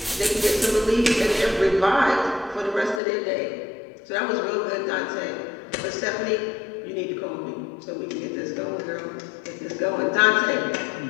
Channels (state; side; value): drops out; right; at 3.0 s